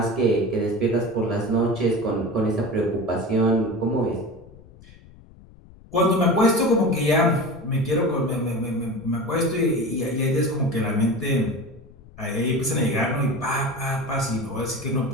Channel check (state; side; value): noise; left; rumble, 22 dB below the sound